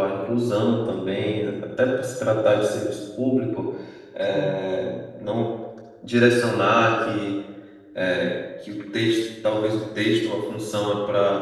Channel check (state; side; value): identical; both; correlation 1.00